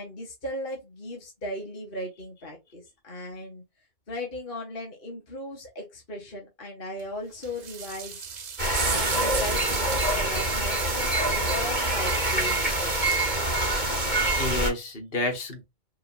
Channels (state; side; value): late; right; 2.2 ms